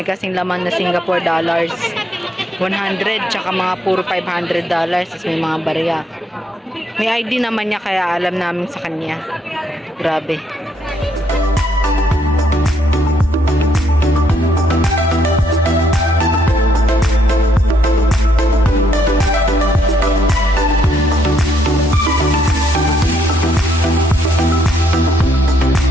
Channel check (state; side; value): normal; both; correlation 0.73